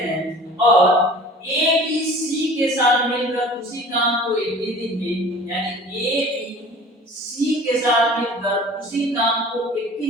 और ए बी सी के साथ मिलकर उसी काम को 21 दिन में, यानी ए बी सी के साथ मिलकर उसी काम को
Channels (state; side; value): normal; both; correlation 0.44